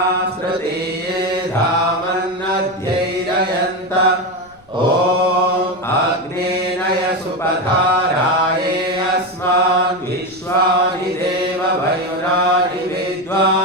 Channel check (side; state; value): left; noise; rumble, 29 dB below the sound